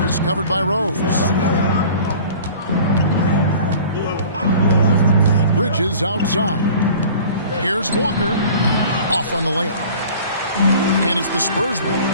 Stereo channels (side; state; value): both; inverted; correlation -0.45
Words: He's covered by Rose. Bridges outside. Here's Walker. Off on the layup. And it's the Spurs ball.